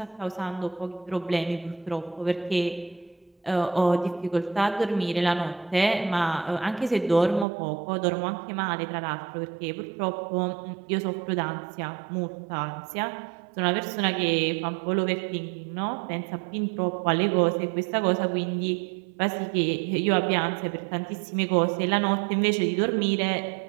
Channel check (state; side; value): drops out; left; at 7.5 s